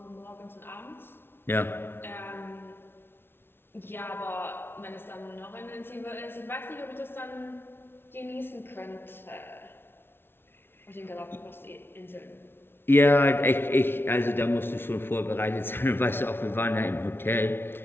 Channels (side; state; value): right; late; 0.11 ms